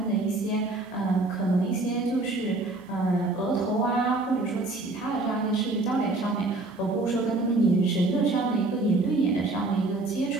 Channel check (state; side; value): quieter; left; 3.1 dB